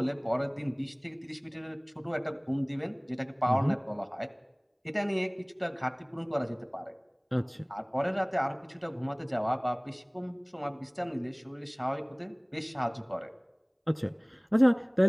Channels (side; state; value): both; identical; correlation 1.00